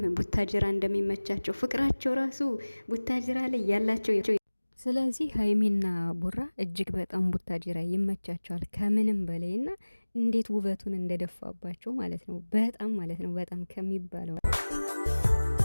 ቡታጅራ እንደሚመቻቸው ፍቅራቸው ራሱ ቡታጅራ ላይ ያላቸው። ስለዚህ ሀይሚና ቡራ እጅግ በጣም ቡታጅራ ይመቻቸዋል ከምንም በላይ እና እንዴት ውበቱን እንደደፋባቸው ማለት ነው። በጣም ማለት ነው በጣም ከሚባለው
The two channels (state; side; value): inverted; both; correlation -1.00